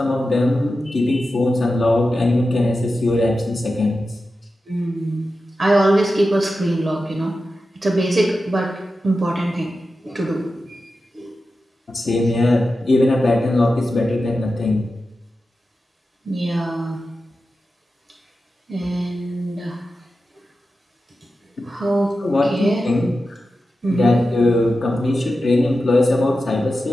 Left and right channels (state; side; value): normal; both; correlation 0.92